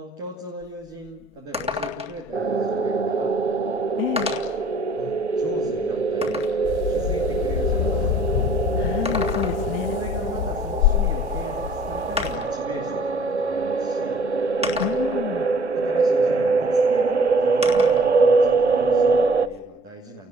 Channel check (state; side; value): normal; both; correlation 0.55